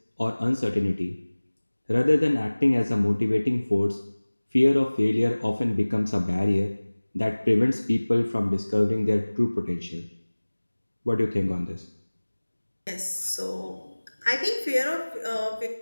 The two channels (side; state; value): both; inverted; correlation -1.00